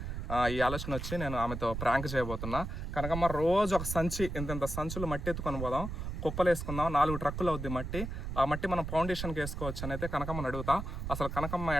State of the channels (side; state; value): right; noise; rumble, 5 dB below the sound